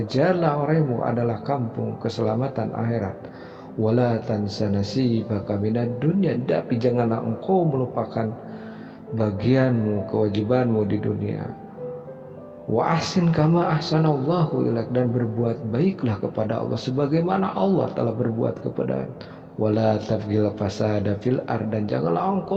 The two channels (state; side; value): identical; both; correlation 1.00